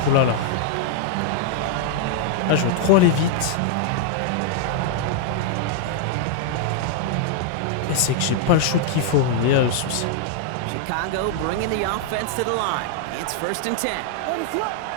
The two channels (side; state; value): both; different; correlation -0.01